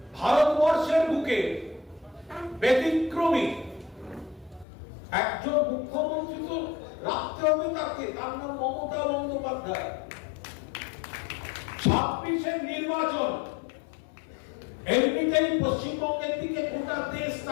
ভারতবর্ষের বুকে ব্যতিক্রমী একজন মুখ্যমন্ত্রী তো রাখতে হবে তাকে, তার নাম মমতা বন্দ্যোপাধ্যায়। 26-এর নির্বাচন এমনিতেই পশ্চিমবঙ্গের দিকে গোটা দেশ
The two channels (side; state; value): right; drops out; at 4.7 s